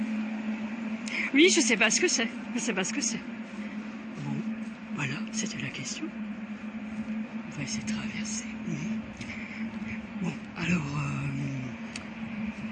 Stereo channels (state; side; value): identical; both; correlation 1.00